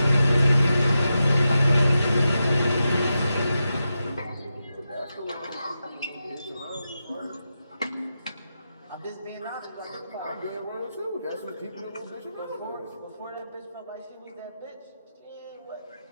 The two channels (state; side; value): inverted; both; correlation -0.90